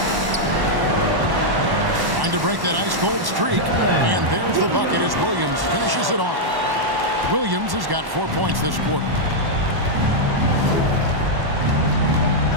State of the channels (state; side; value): late; left; 1.1 ms